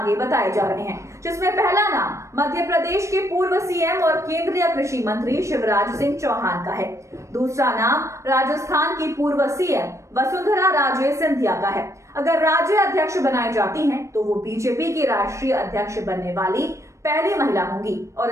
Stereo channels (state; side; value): late; left; 0.15 ms